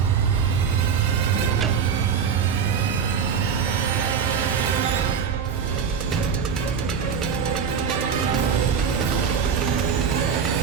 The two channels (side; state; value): left; quieter; 6.8 dB